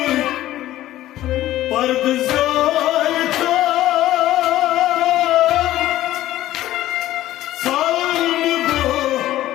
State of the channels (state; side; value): quieter; right; 14.4 dB